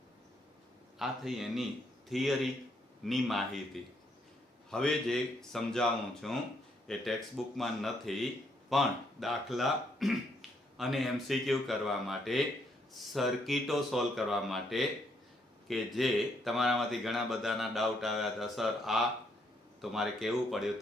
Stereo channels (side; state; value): both; normal; correlation 0.73